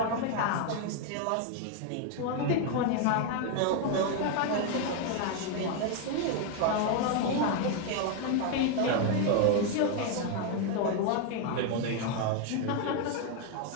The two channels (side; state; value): both; different; correlation 0.01